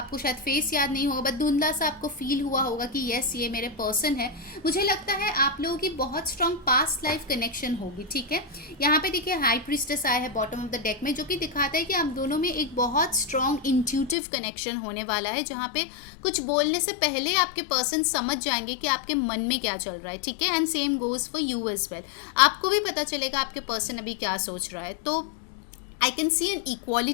शायद फेस याद नहीं होगा, बट धुंधला सा आपको फील हुआ होगा कि यस ये मेरे पर्सन है. मुझे लगता है आप लोगों की बहुत स्ट्रॉन्ग पास्ट लाइफ कनेक्शन होगी. ठीक है, यहाँ पे देखिए हाई प्रीस्टेस आया है बॉटम ऑफ द डेक में, जो कि दिखाता है कि आप दोनों में एक बहुत स्ट्रॉन्ग इंट्यूटिव कनेक्शन होने वाला है, जहाँ पे कुछ बोलने से पहले आपके पर्सन समझ जाएंगे कि आपके मन में क्या चल रहा है. ठीक है, and same goes for you as well. आपको भी पता चलेगा आपके पर्सन अभी क्या सोच रहा है. तो I can see an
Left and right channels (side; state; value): right; drops out; at 14.2 s